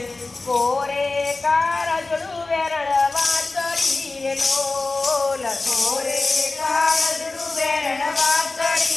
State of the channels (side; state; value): right; quieter; 3.5 dB